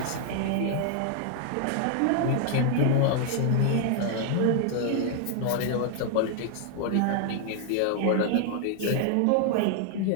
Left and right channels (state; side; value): different; both; correlation 0.00